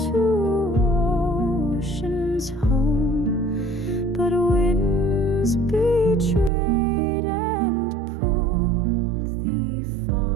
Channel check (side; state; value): left; drops out; at 6.5 s